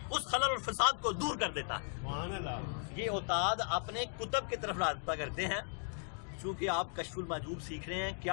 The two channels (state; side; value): silent; right; 53 dB below the other